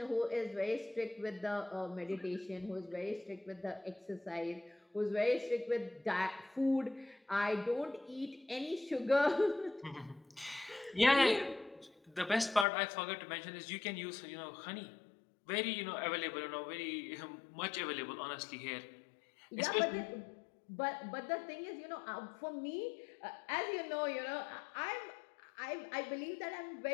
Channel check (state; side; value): drops out; right; at 12.7 s